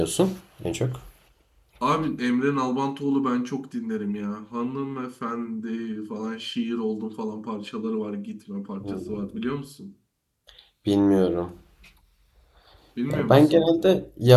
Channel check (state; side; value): identical; both; correlation 1.00